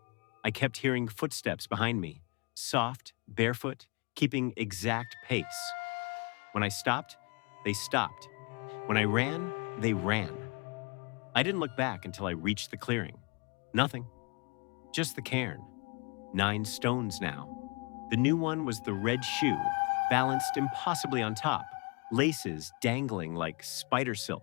I kept hearing footsteps behind me, soft, barefoot, keeping exact pace. When I stopped, they stopped. When I ran, they ran. I didn't look back until I reached the clearing. Nothing. Just the cairn. 9 stones now. The new one was the red shoe, balanced impossibly on top, laces dangling like spider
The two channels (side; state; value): right; quieter; 30.9 dB